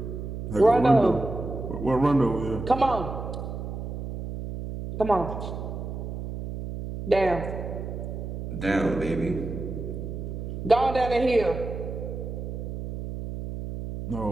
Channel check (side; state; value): right; noise; hum, 6 dB below the sound